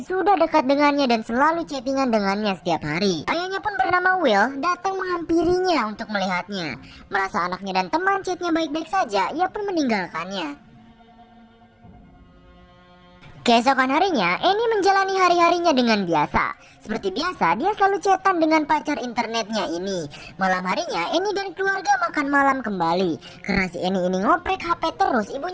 sudah dekat dengannya dan selalu chattingan dengannya setiap hari. Ayahnya pun bernama Will datang menghampirinya untuk melihatnya. Merasa anaknya dan teman chatnya baik-baik saja, ia pun meninggalkannya. Keesokan harinya, Annie menjalani hari-harinya dengan biasa. Seperti biasa, dia selalu chatan dengan pacar internetnya ini. Malam harinya, Annie dan keluarga makan malam kembali. Karena si Annie ini ngoprek HP terus,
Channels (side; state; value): both; identical; correlation 1.00